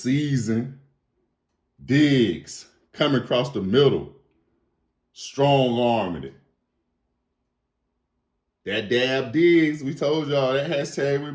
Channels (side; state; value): both; identical; correlation 1.00